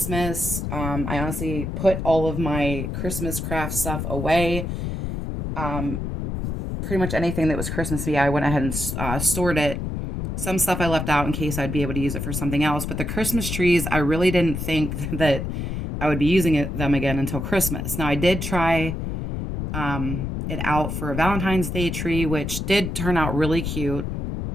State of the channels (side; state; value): left; noise; rumble, 4 dB below the sound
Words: I honestly put all of my Christmas craft stuff away. Pretty much anything that was Christmassy, I went ahead and stored it. Some stuff I left out in case I'd be able to use it for something else. But the Christmas trees, I really didn't think that I would be using them again until Christmas. Now, I did try it out for a Valentine's Day tree, which did turn out really cute.